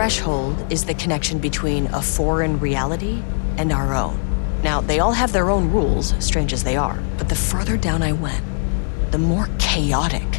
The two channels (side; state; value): right; silent; 66 dB below the other